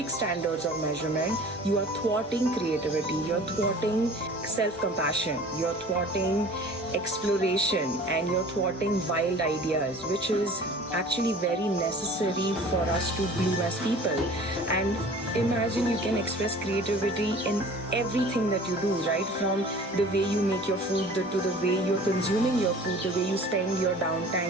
standards of measurement, you are thwarting creativity, you're thwarting self-compassion, you're thwarting exploration, and you're thwarting wild ideas, which is actually very necessary for us to bloom as people. And imagine you can express creativity in everything that you do, right? From the way you make your food, to the way you're consuming your food, the way you spend your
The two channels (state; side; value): normal; both; correlation 0.45